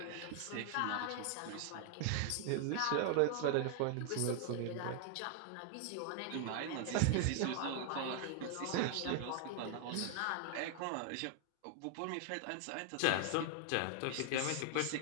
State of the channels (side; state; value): both; different; correlation 0.00